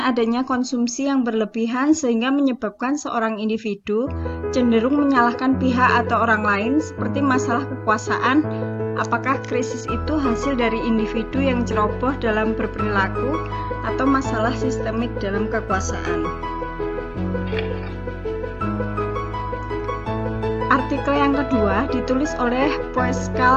adanya konsumsi yang berlebihan sehingga menyebabkan seorang individu cenderung menyalahkan pihak atau orang lain seperti masalah kekuasaan. Apakah krisis itu hasil dari individu yang ceroboh dalam berperilaku atau masalah sistemik dalam kekuasaan? Artikel yang kedua ditulis oleh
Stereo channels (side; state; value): both; identical; correlation 1.00